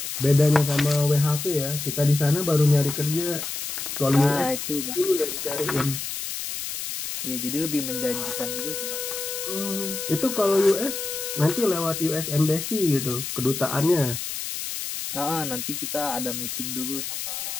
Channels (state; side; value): noise; left; hiss, 5 dB below the sound